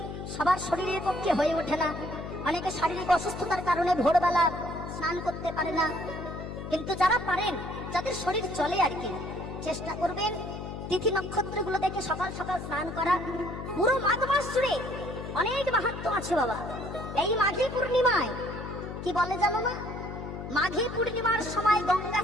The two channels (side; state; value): left; noise; hum, 8 dB below the sound